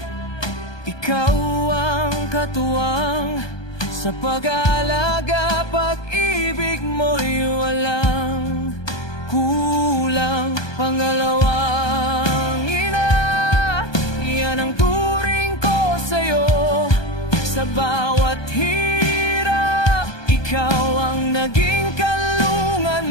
ikaw ang katuwang. Sa pag-aalaga, pag-ibig mo'y walang kulang. Pangalawang ina, yan ang turing ko sa'yo. Sa bawat hirap, ikaw ang naging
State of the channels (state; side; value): late; right; 1.2 ms